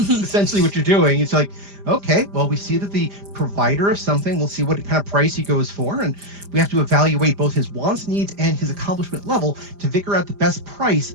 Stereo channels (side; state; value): left; late; 5.0 ms